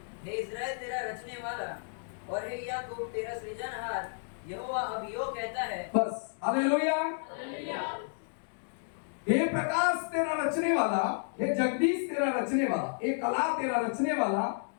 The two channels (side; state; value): right; silent; digital silence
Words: रचने वाला और हे याकूब तेरा सृजनहार यहोवा अब यूं कहता है। बस। हालेलुया। हे प्रकाश तेरा रचने वाला, हे जगदीश तेरा रचने वाला, हे कला तेरा रचने वाला,